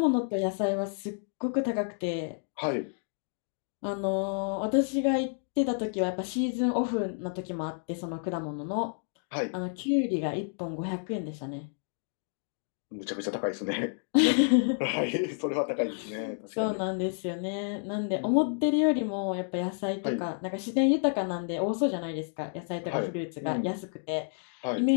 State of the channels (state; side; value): silent; right; 58 dB below the other